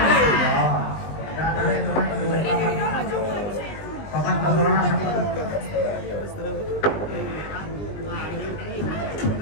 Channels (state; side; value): late; right; 20 ms